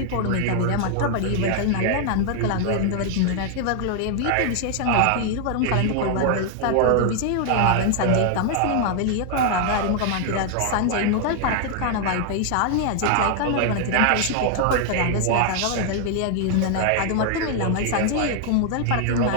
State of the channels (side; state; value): both; different; correlation 0.00